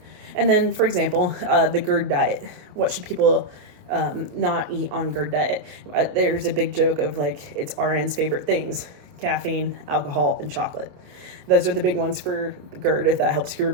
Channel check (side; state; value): left; late; 28 ms